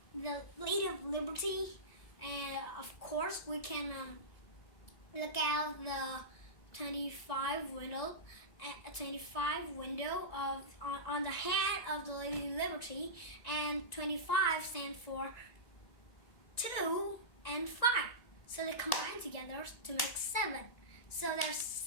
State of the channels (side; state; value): right; late; 2.0 ms